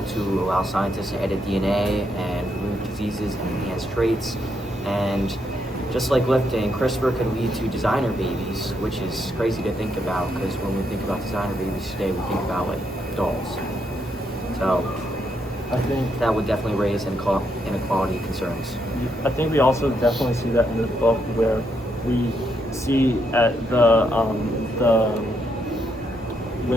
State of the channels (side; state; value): both; normal; correlation 0.78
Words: to allow scientists to edit DNA and remove diseases and enhance traits. And just like lifting, CRISPR could lead to designer babies, which is crazy to think about, because when we think about designer babies today, we think about dolls. So I think that would definitely raise inequality concerns. I think we also definitely see that in this book, where we see at